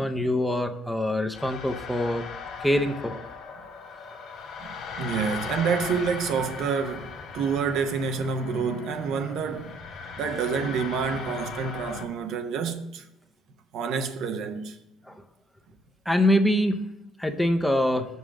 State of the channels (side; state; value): both; normal; correlation 0.69